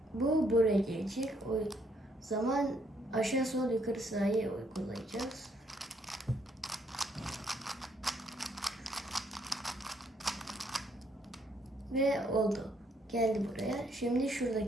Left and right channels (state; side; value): normal; both; correlation 0.70